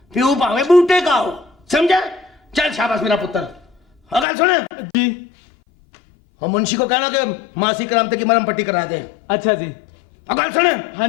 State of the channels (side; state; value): right; drops out; at 4.2 s